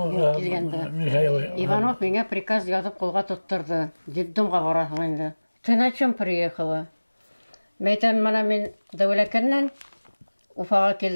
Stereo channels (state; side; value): inverted; both; correlation -1.00